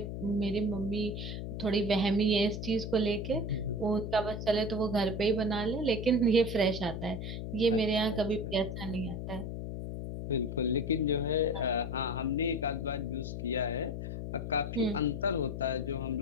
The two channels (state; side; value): noise; left; hum, 5 dB below the sound